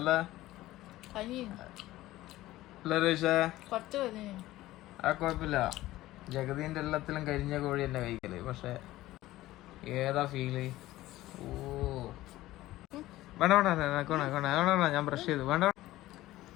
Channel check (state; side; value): quieter; right; 16.4 dB